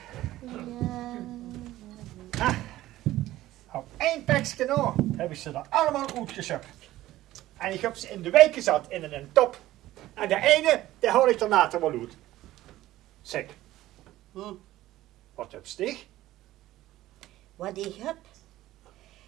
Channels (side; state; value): left; quieter; 15.4 dB